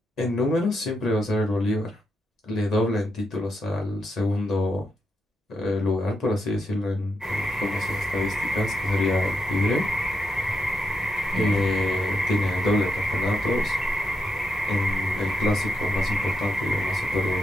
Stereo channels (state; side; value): normal; both; correlation 0.83